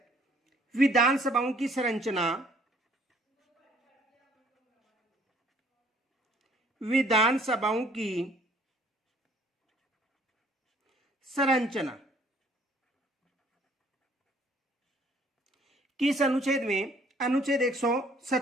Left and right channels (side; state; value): both; normal; correlation 0.59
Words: विधानसभाओं की संरचना, विधानसभाओं की संरचना किस अनुच्छेद में? अनुच्छेद